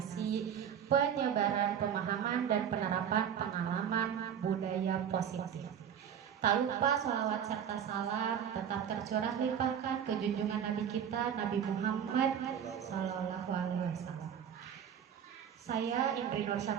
penyebaran pemahaman dan penerapan pengalaman budaya positif. Tak lupa sholawat serta salam tetap tercurah limpahkan ke junjungan Nabi kita, Nabi Muhammad Sallallahu Alaihi Wasallam. Saya Indri Nur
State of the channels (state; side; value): quieter; left; 8.6 dB